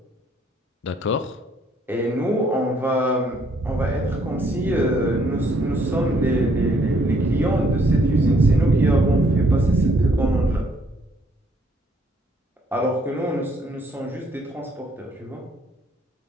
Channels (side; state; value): both; normal; correlation 0.66